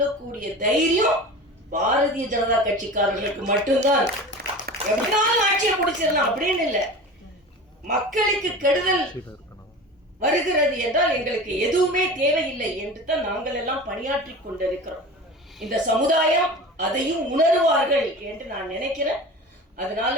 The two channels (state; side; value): normal; both; correlation 0.34